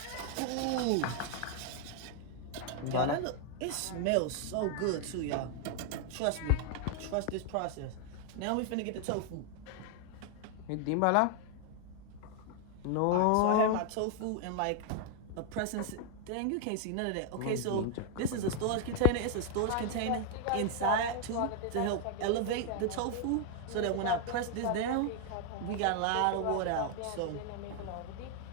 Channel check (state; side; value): different; both; correlation 0.00